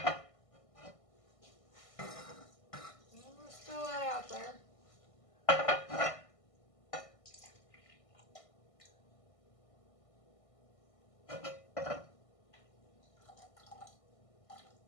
throw that out there.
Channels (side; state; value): right; late; 1.5 ms